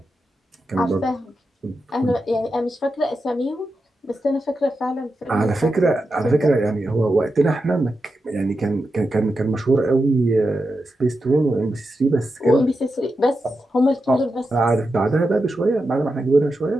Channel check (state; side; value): normal; both; correlation 0.89